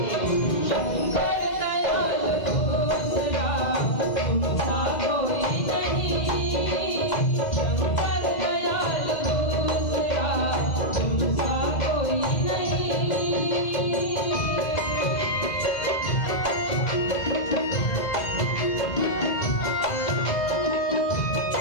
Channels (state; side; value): late; right; 2.0 ms